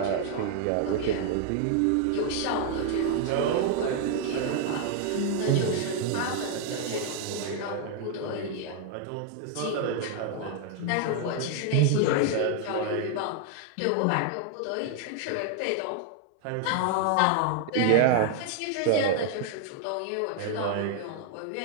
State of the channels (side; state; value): both; different; correlation 0.00